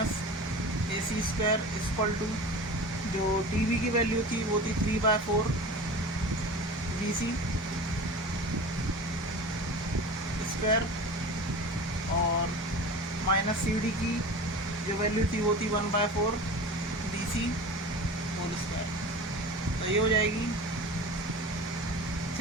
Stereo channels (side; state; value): both; normal; correlation 0.34